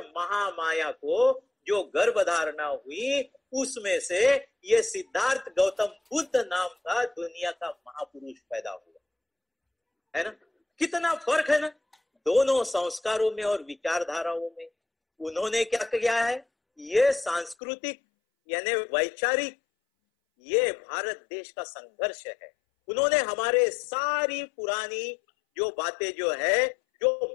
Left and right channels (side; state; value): right; drops out; at 17.6 s